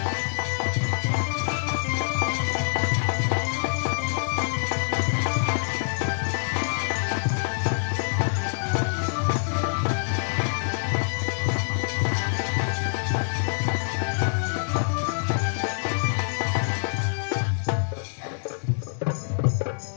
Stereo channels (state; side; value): silent; right; digital silence